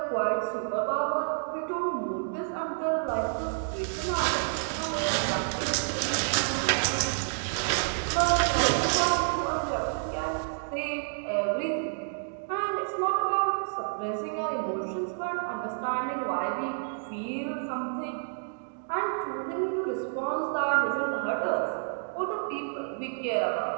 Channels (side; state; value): left; silent; digital silence